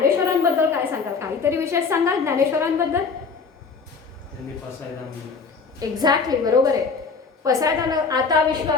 काय सांगाल? काहीतरी विशेष सांगाल ज्ञानेश्वरांबद्दल? एक्झॅक्टली, बरोबर आहे. पसायदान आता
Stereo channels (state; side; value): quieter; right; 5.0 dB